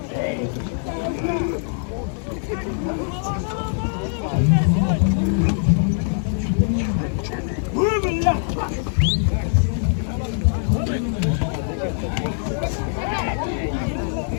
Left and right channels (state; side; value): silent; right; 64 dB below the other